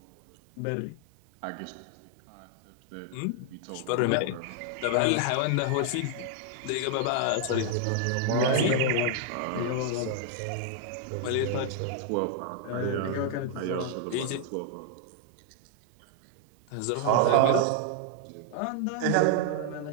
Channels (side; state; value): both; different; correlation 0.00